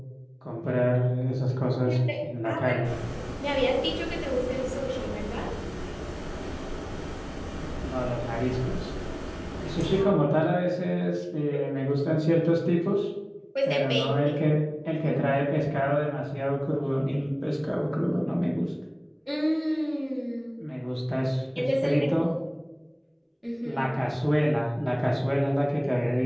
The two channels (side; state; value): both; identical; correlation 1.00